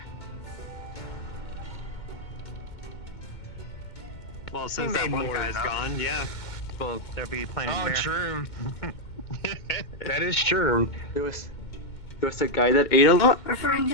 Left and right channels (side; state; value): right; late; 2.2 ms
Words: Well, since We that made one more guy's than gone, yeah. Well, there'll be plenty Oh, of beer. true. That is true. There was a guy that ate a lot. Referring